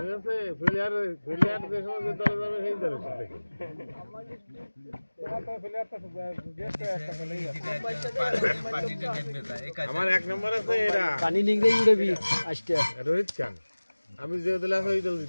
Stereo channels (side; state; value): both; inverted; correlation -1.00